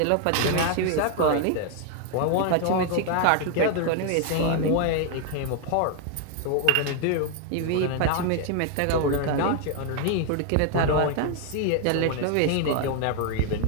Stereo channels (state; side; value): different; both; correlation 0.00